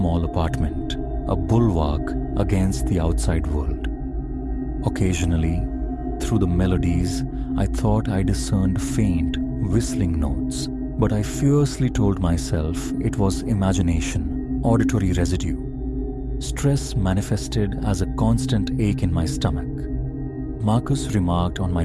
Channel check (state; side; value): identical; both; correlation 1.00